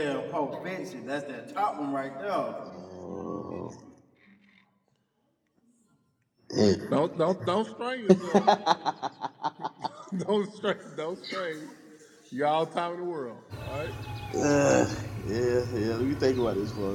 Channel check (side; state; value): both; identical; correlation 1.00